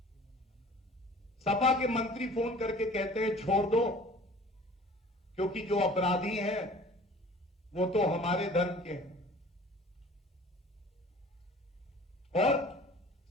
सपा के मंत्री फोन करके कहते हैं छोड़ दो, क्योंकि जो अपराधी हैं वो तो हमारे धर्म के हैं। और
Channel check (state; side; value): normal; both; correlation 0.47